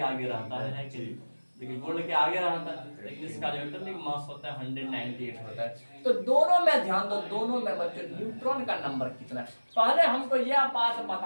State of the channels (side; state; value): both; inverted; correlation -1.00